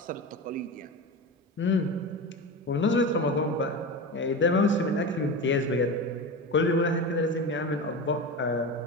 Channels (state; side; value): normal; both; correlation 0.25